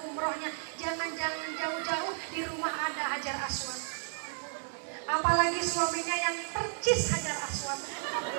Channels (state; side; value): silent; left; digital silence